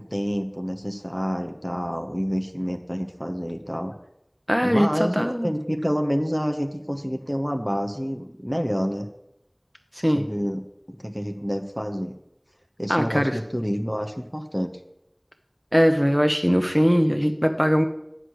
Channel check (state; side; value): identical; both; correlation 1.00